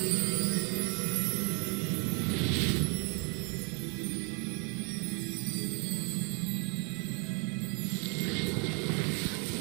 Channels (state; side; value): quieter; left; 35.5 dB